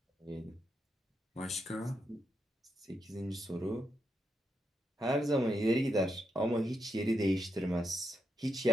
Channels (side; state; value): both; normal; correlation 0.82